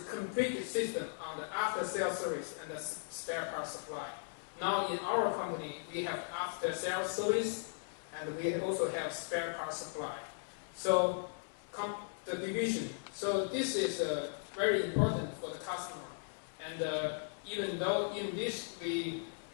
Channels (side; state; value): right; silent; digital silence